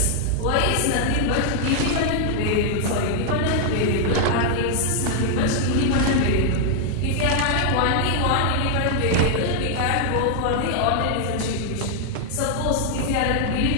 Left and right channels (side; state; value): both; different; correlation 0.00